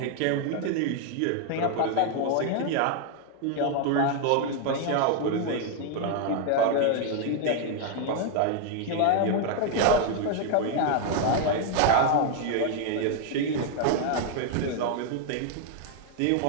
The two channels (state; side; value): different; both; correlation 0.00